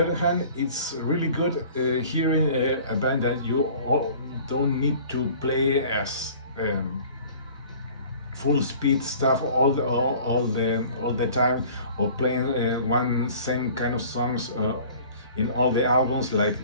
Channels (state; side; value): inverted; both; correlation -0.47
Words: other hand, it's really good hearing a band that you all don't need to play as full speed stuff all the time, or playing one same kind of songs in all the albums like